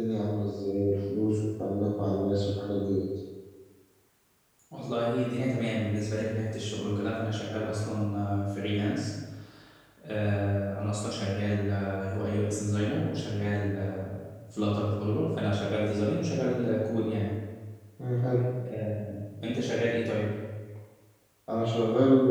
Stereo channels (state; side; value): identical; both; correlation 1.00